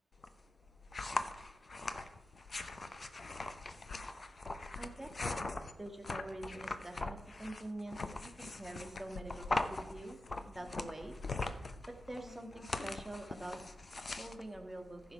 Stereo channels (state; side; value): normal; both; correlation 0.92